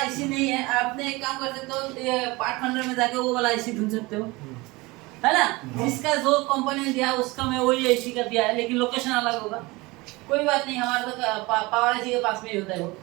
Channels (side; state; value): left; quieter; 23.0 dB